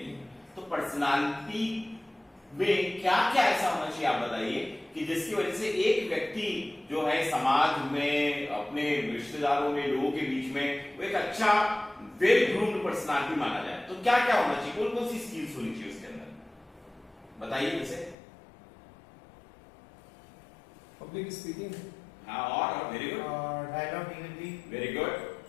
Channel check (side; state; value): right; drops out; at 18.2 s